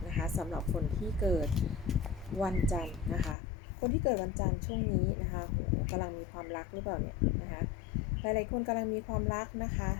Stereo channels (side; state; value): right; drops out; at 3.4 s